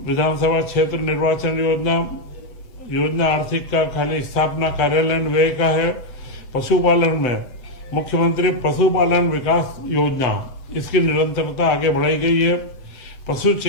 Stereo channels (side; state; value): right; late; 7.7 ms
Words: विधानसभा क्षेत्र निर्वाचन योजना आर्थिक का खाली स्थापना कार्यालय व्यय का है। पशुपालन में मुख्यमंत्री पशुपालन विकास योजना, इसकी निरंतरता आगे बढ़ाई गई है। पशु